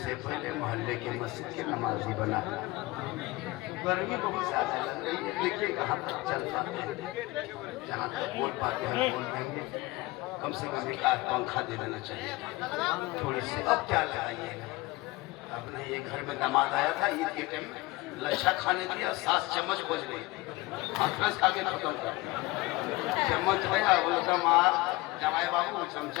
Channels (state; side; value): quieter; right; 20.9 dB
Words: पहले मोहल्ले के मस्जिद के नमाजी बना। गर्मी बहुत ज्यादा लग रही है, देखिए कहाँ तक चल पाते हैं। जहाँ तक बोल पाते हैं बोल देंगे, कम से कम एक आध पंखा दे देना चाहिए थोड़ी सी। अब क्या लगाइएगा? अब नहीं, ये घर में दामाद आया था ईद के टाइम में, लच्छा खाने दिया, 7 चम्मच खोज रही थी, हाथ खा के खत्म कर चम्मच है। बोलता मार जमाई बाबू